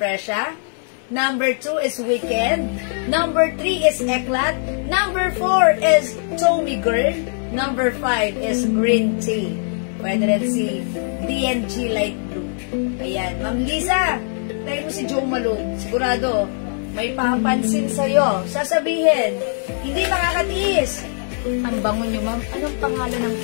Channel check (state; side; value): silent; right; digital silence